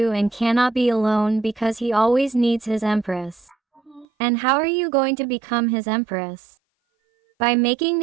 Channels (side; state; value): left; drops out; at 4.0 s